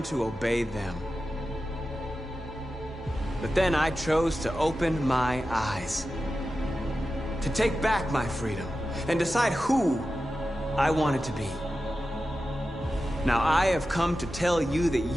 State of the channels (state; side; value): normal; both; correlation 0.92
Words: to obey them. But then I chose to open my eyes, to take back my freedom, and decide who I wanted to be. Now I have come to tell you that